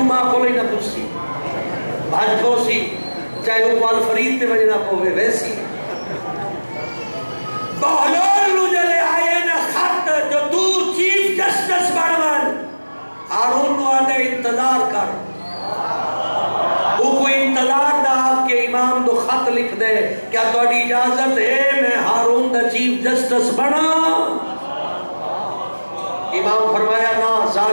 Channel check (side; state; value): both; inverted; correlation -1.00